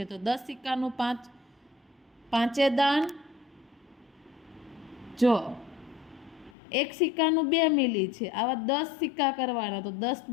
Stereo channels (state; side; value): drops out; right; at 6.6 s